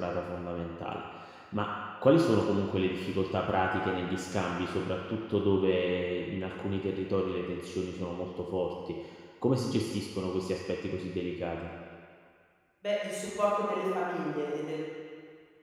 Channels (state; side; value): identical; both; correlation 1.00